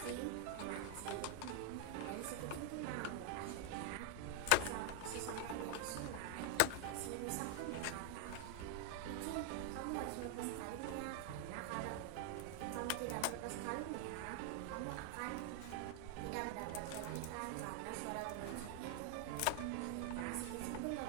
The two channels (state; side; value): different; both; correlation 0.00